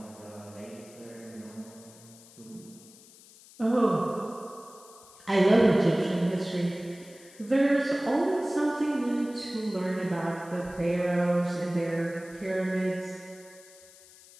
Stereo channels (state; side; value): noise; left; hiss, 22 dB below the sound